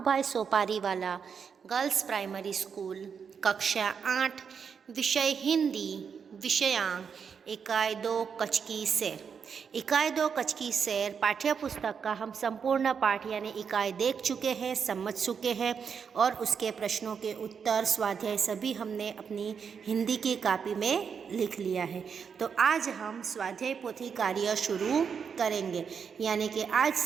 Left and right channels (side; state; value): left; quieter; 6.6 dB